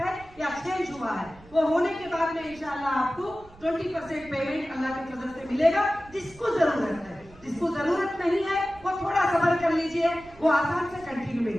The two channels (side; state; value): right; noise; rumble, 23 dB below the sound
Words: है या चेंज हुआ है। वो होने के बाद में इंशाल्लाह आपको 20% पेमेंट अल्लाह के फजल से मिलेगा। जिसको जरूरत है, जिसको जरूरत नहीं है वो थोड़ा सब्र कर लीजिए, वो आसान से कंटिन्यू